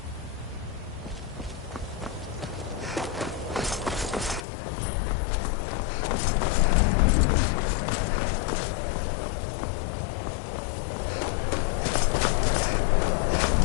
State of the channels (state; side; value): drops out; right; at 4.5 s